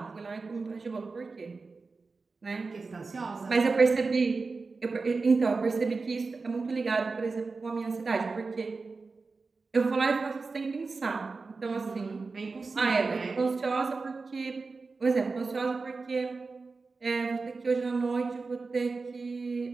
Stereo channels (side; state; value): left; quieter; 4.1 dB